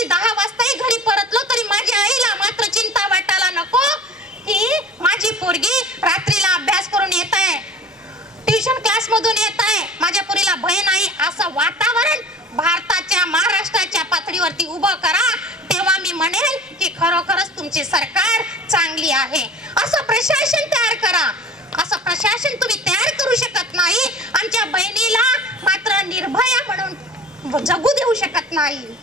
10 वाजताही घरी परतलो तरी माझ्या आईला मात्र चिंता वाटायला नको की माझी पोरगी रात्रीला अभ्यास करून येत आहे, ट्युशन क्लास मधून येत आहे, माझ्या पोरीला भय नाही. असं वातावरण भारताच्या, महाराष्ट्राच्या पातळीवरती उभं करा. तेव्हा मी म्हणेल की खरोखरच तुमची सरकार चांगली आहे. असं प्रशासन तयार करा. असं प्रशासन तुम्ही तयार करू शकत नाही. आमच्या बहिणीला मात्र निर्भया म्हणून जगू देऊ शकत नाही.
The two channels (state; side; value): normal; both; correlation 0.41